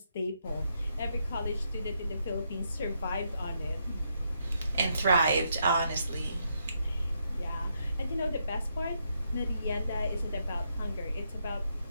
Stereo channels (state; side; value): inverted; both; correlation -0.78